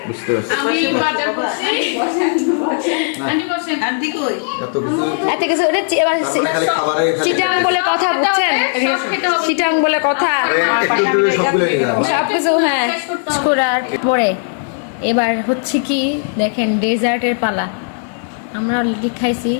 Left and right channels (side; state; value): right; silent; digital silence